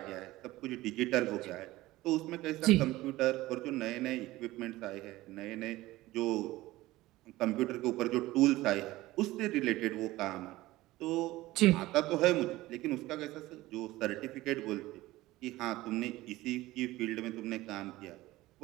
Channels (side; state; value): left; quieter; 17.8 dB